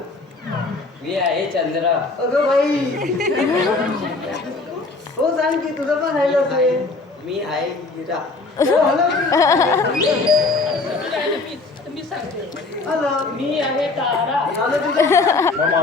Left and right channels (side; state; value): right; quieter; 3.6 dB